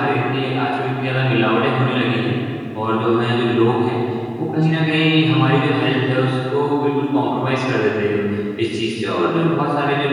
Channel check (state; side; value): identical; both; correlation 1.00